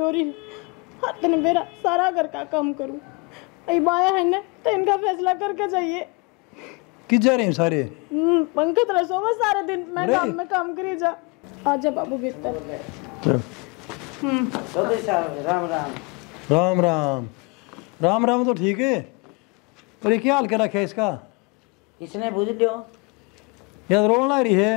रही हाथ ने मेरा सारा घर का काम करूं। बाया है ना तो इनका फैसला करके चाहिए। किस जा रहे हैं सारे? पंकज रसो में सारे दिन मैं काम में काम करी जा। आजा बाबू भीतर। चलो। राम राम राम राम राम राम तो ठीक है पर ये क्या हाल क्या रखा है इसका? इसने बुझ लियो यार रोल ना रही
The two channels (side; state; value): right; quieter; 29.8 dB